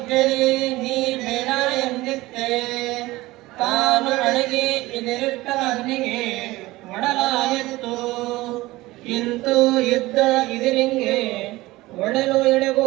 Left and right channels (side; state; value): left; quieter; 19.2 dB